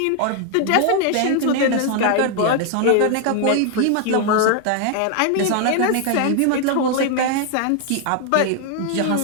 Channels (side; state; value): both; different; correlation 0.00